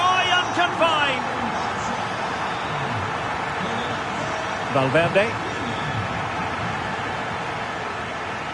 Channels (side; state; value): both; identical; correlation 1.00